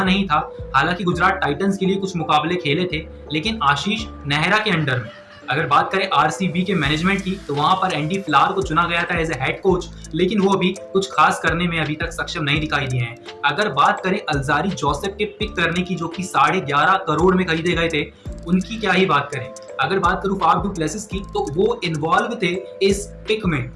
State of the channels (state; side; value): identical; both; correlation 1.00